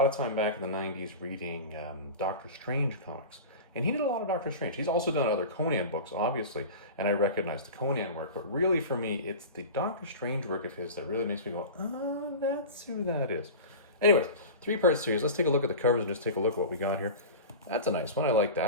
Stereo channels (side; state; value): both; inverted; correlation -0.31